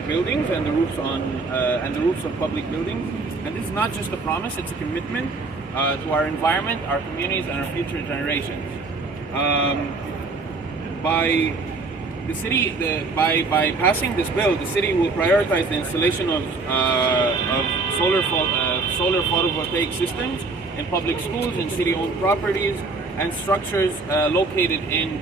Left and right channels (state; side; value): quieter; left; 3.7 dB